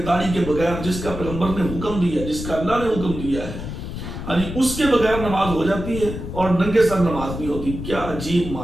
داڑھی کے بغیر، جس کا پیغمبر نے حکم دیا، جس کا اللہ نے حکم دیا ہے، یعنی اس کے بغیر نماز ہو جاتی ہے اور ننگے سر نماز نہیں ہوتی۔ کیا عجیب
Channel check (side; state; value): left; noise; rumble, 8 dB below the sound